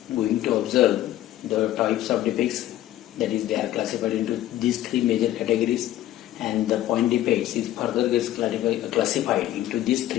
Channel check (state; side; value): quieter; right; 13.6 dB